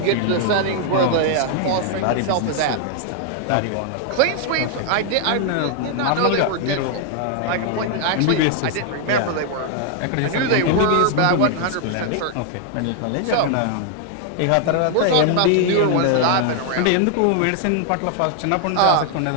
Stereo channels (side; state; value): both; different; correlation 0.00